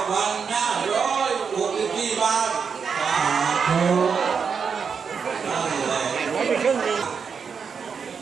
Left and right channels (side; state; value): left; quieter; 6.1 dB